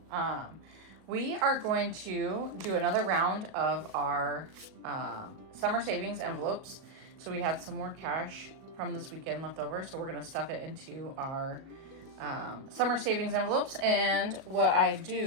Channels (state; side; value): late; left; 37 ms